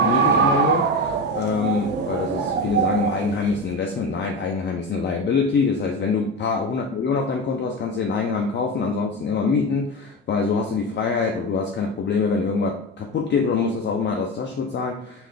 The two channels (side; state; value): both; normal; correlation 0.22